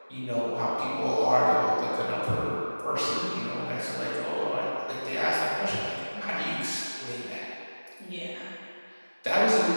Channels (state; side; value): inverted; both; correlation -1.00